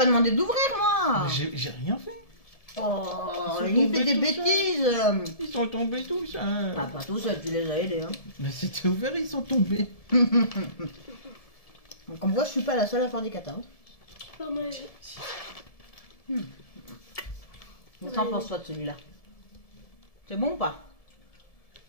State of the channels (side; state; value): right; late; 1.7 ms